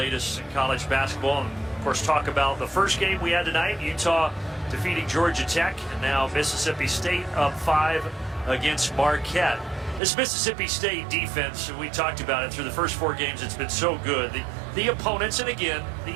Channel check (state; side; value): drops out; left; at 10.0 s